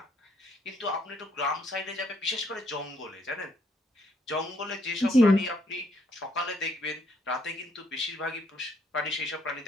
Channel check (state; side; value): normal; both; correlation 0.70